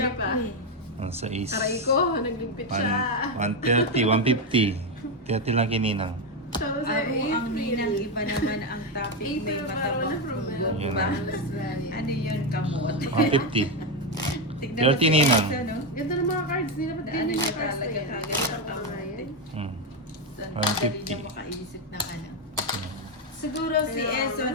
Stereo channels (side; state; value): both; normal; correlation 0.07